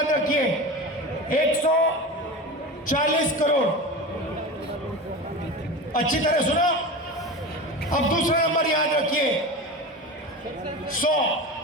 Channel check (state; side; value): normal; both; correlation 0.28